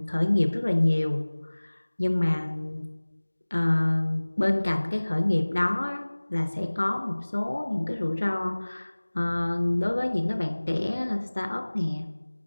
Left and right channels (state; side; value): inverted; both; correlation -1.00